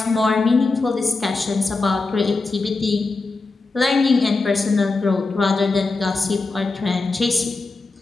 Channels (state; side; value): quieter; right; 3.7 dB